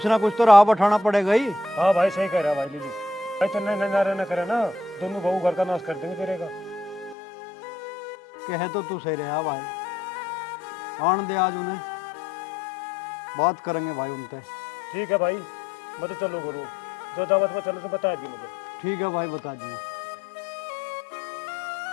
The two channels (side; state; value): right; drops out; at 7.2 s